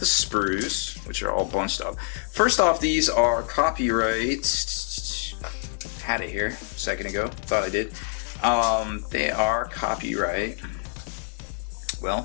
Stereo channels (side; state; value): right; silent; 60 dB below the other